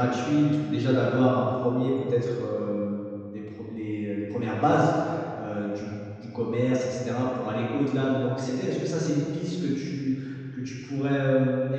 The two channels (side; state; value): both; identical; correlation 1.00